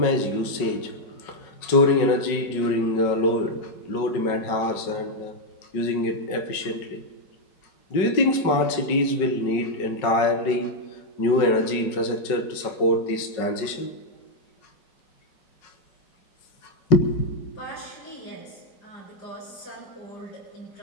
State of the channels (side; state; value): right; late; 5.4 ms